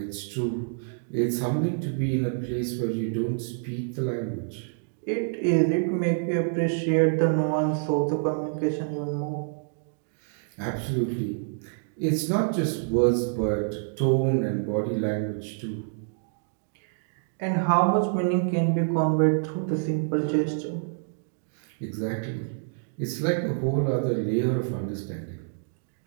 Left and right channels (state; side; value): silent; left; digital silence